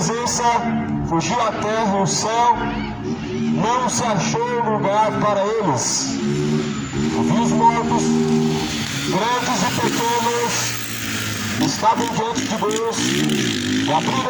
fugiu a terra e o céu, não se achou lugar para eles. E vi os mortos, grandes e pequenos, estavam diante de Deus, e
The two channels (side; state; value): both; identical; correlation 1.00